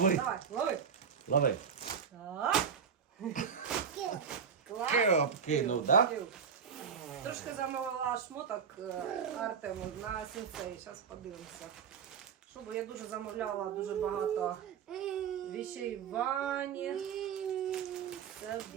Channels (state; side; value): quieter; left; 6.9 dB